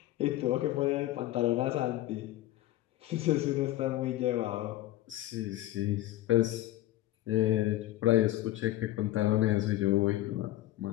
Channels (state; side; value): quieter; right; 15.2 dB